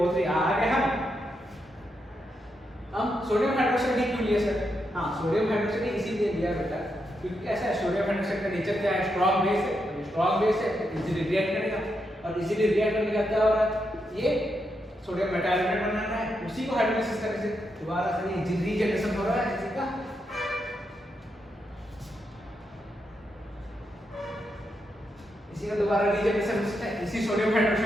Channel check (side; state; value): both; normal; correlation 0.83